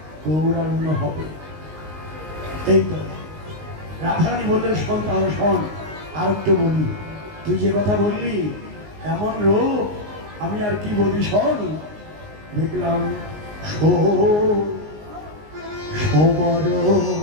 গৌরাঙ্গ হবে। এই তো রাধারানী বললেন শোন তাহলে শোন আর একটু বলি তুই যে কথা বললি এমন রূপ আমি আর কি বলি শোন দেখলাম সবর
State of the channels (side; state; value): left; late; 19 ms